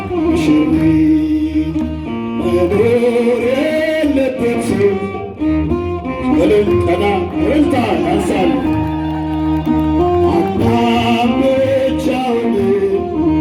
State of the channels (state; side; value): identical; both; correlation 1.00